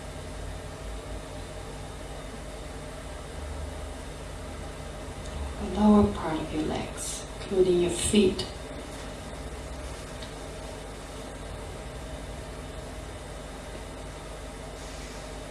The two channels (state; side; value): identical; both; correlation 1.00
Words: The lower part of your legs, including your feet.